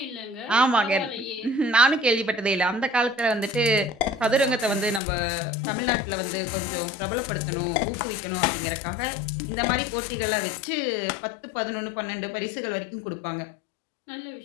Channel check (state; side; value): drops out; right; at 5.0 s